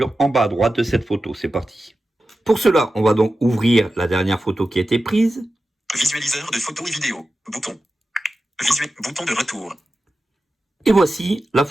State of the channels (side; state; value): both; normal; correlation 0.93